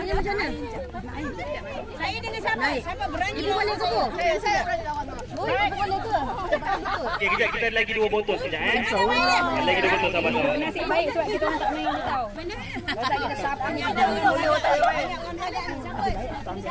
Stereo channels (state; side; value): identical; both; correlation 1.00